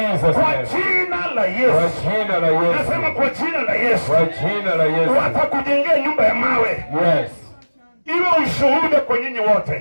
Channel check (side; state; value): both; inverted; correlation -1.00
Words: la Yesu. Kwa jina la Yesu. Nasema kwa jina la Yesu. Kwa jina la Yesu. Watakujengea nyumba ya mawe. Iwe ushuhuda kwa nyinyi